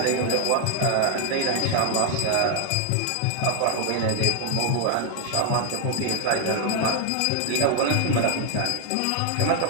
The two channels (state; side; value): different; both; correlation 0.00